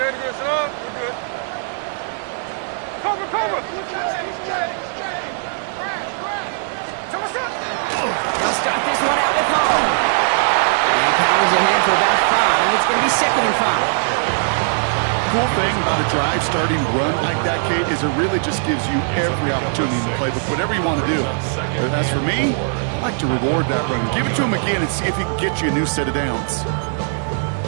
sit up. We're good. Cover. Come on, set. They'll start this one out with home. He powers ahead for about 5. It's going to be 2nd and 5. Cool thing about a drive starting run like that, Kate, is it really just gives you every opportunity in the playbook, whatever you want to do. But as for me, I like to reward that run. Give it to him again and see if he can get you a new set of downs.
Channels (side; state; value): left; silent; digital silence